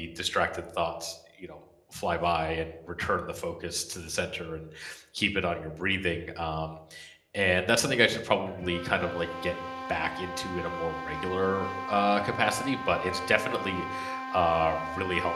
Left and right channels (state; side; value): identical; both; correlation 1.00